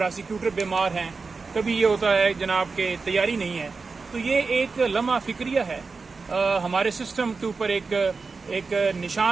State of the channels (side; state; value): left; quieter; 4.4 dB